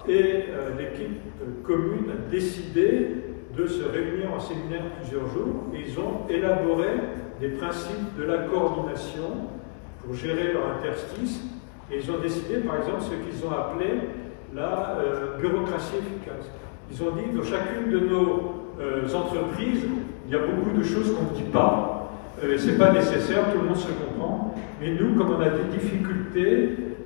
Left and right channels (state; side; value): silent; right; 56 dB below the other